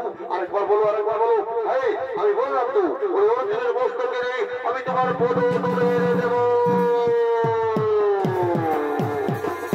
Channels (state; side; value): identical; both; correlation 1.00